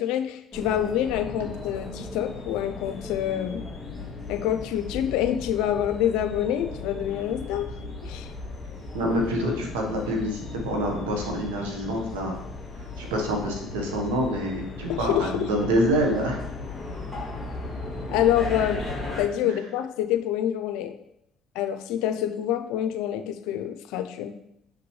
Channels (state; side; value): quieter; right; 4.8 dB